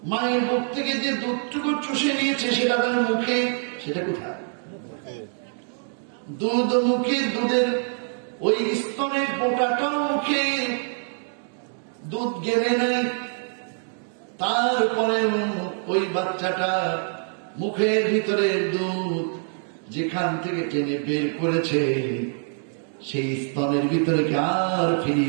মায়ের বুক থেকে যে দুধটুকু চুষে নিয়েছে সেটা তার মুখে, সেটা কোথায়? দুধ মুখে, দুধের ওই স্তনের পোটাটাও মুখে, দুধ গেলে নাই। তারপরে ওই বাচ্চাটা মুখের ভিতরে দুধ যেখান থেকে টেনে বের করেছে, সেই স্তনের ভিতরে কি আর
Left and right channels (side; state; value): left; silent; 62 dB below the other